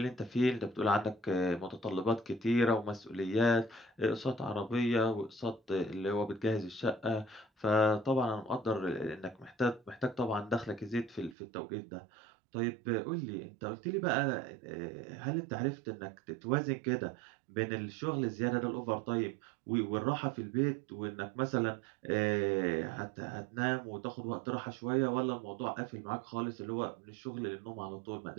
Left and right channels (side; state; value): left; drops out; at 11.4 s